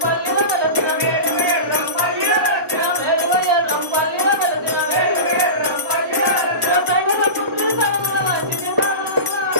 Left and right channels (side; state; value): left; late; 1.1 ms